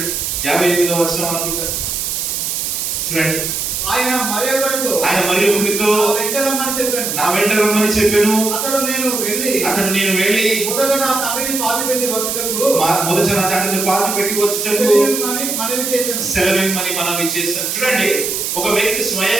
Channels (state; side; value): noise; right; hiss, 2 dB below the sound